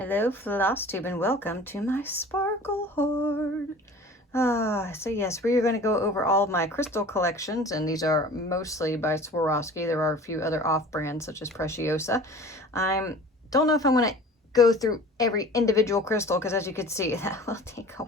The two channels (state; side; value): normal; both; correlation 0.43